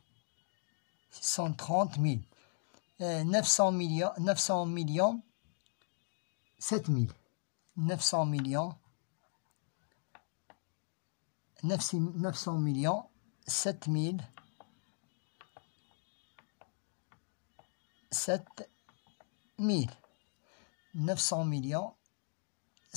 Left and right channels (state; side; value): silent; right; 52 dB below the other